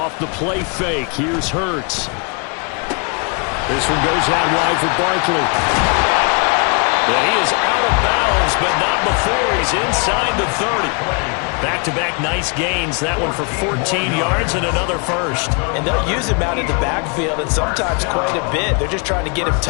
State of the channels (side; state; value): right; quieter; 35.3 dB